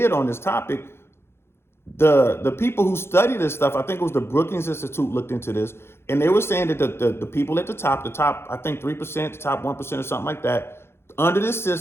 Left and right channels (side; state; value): right; late; 0.12 ms